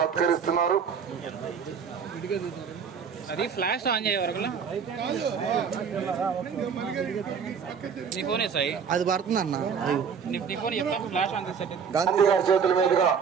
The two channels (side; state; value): left; quieter; 6.6 dB